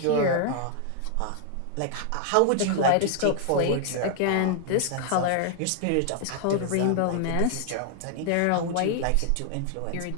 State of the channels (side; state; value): both; different; correlation 0.00